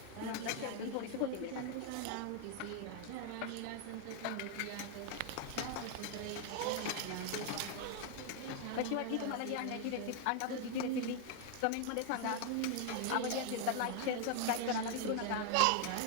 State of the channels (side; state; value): both; different; correlation 0.00